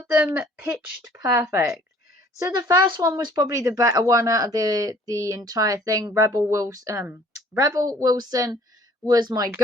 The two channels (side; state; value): both; normal; correlation 0.56